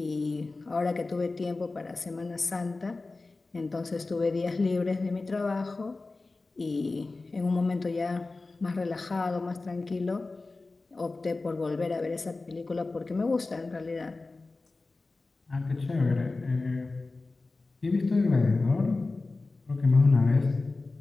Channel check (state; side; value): quieter; right; 3.5 dB